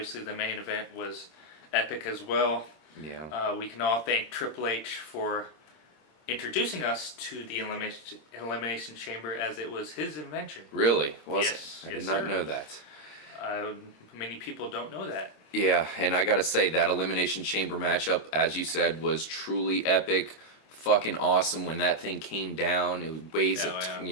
the main event was epic as well. Yeah. We can all thank Triple H for introducing us to the Elimination Chamber, as it was his invention. Really? Yes. I did not know that. Many people don't know that. Yeah, and I gotta say, that Elimination Chamber matchup, as you said, was truly epic. Fucking awesome when that thing came down. It weighs,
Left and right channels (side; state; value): right; late; 26 ms